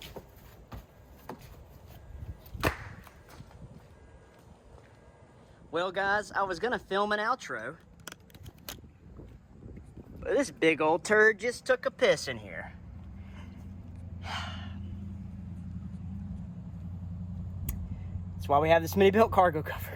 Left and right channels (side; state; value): both; identical; correlation 1.00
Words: Well, guys, I was gonna film an outro, but this big old turd just took a piss in here. That's why we have the SmittyBilt cargo